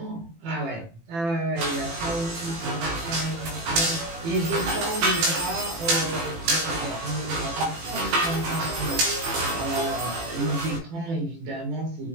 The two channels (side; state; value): left; late; 18 ms